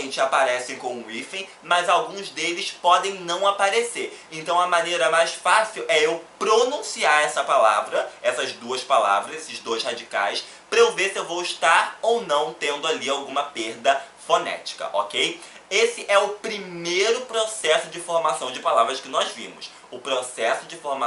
aparecem com o hífen, mas alguns deles podem não aparecer. Então, a maneira mais fácil é eu pronunciar essa palavra, essas duas palavras, esses dois radicais, para eu ver se eu vou estar ou não tendo ali alguma perda fonética, ok? Esse é o primeiro processo de formação de palavras que nós vimos. O processo de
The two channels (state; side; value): identical; both; correlation 1.00